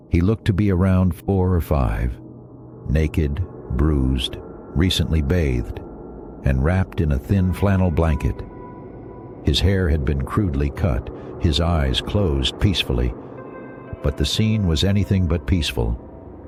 He looked to be around 4 or 5, naked, bruised, recently bathed, and wrapped in a thin flannel blanket. His hair had been crudely cut, his eyes closed peacefully, but the scene was anything but peaceful.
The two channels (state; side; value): identical; both; correlation 1.00